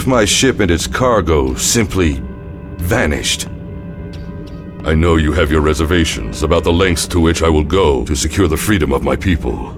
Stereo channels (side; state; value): both; identical; correlation 1.00